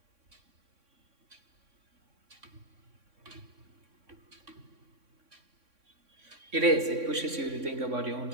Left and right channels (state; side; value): late; left; 3.6 ms